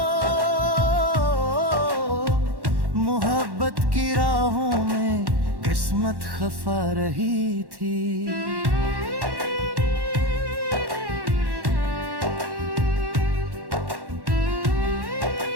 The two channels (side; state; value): left; late; 1.1 ms